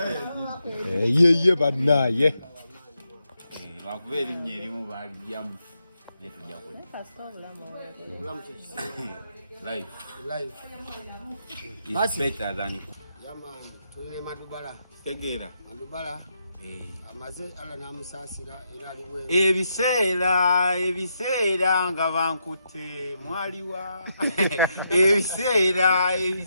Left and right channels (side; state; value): both; inverted; correlation -0.82